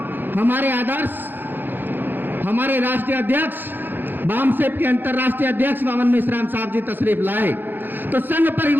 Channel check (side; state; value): left; late; 0.092 ms